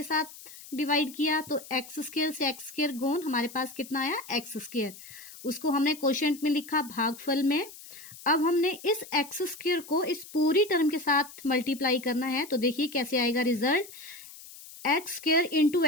साथ डिवाइड किया, तो एक्स स्क्वायर से एक्स स्क्वायर गुण हमारे पास कितना आया एक्स स्क्वायर, उसको हमने क्वोशिएंट में लिखा भागफल में। अब हमने इस एक्स स्क्वायर को इस पूरी टर्म के साथ मल्टीप्लाई करना है, तो देखिए कैसे आएगा result, x square into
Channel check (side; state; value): left; noise; hiss, 17 dB below the sound